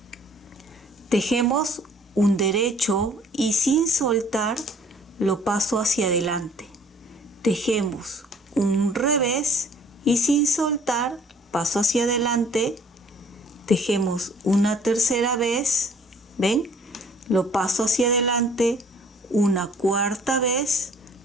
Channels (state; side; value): normal; both; correlation 0.56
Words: Tejemos un derecho y sin soltar lo paso hacia adelante. Tejemos un revés y sin soltar paso hacia adelante. Tejemos una tercera vez, ¿ven? Lo paso hacia adelante, una cuarta vez,